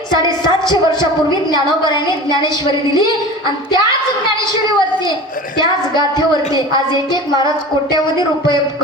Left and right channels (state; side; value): normal; both; correlation 0.36